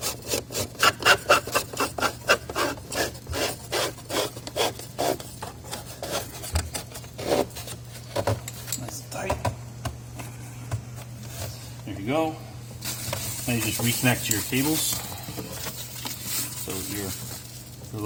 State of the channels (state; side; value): identical; both; correlation 1.00